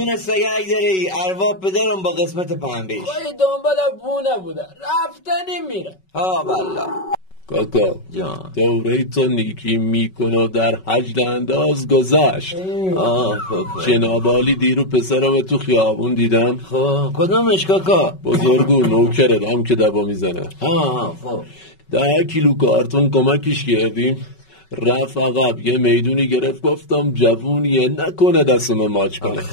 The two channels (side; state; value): right; late; 5.3 ms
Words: سگک داره ای، ارواح پدرم با قسمت پنبهش. خواهی دنبال بونه بوده، رفتنی میره. ها والله. کاکا جان دوره تو نیکی میکنه و در حج انداز گذشت. جناب عالی دیرو پسرم تو خیابون دیدم. خب کدومش کاکا؟ بزرگو نوکردم که دبا میزنه. خب 10 کیلو کارتون کمکش کردیم، رفت عقب یه میدونی گرفت، گفتم جوونیه نکنه دستم ماچ کنه،